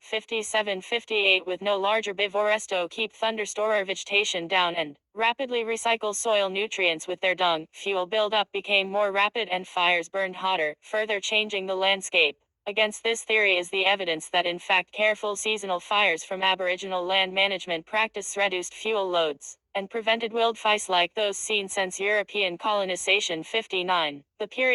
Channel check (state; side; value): identical; both; correlation 1.00